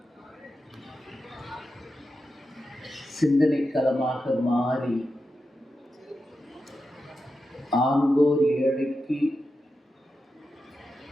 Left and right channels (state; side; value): normal; both; correlation 0.89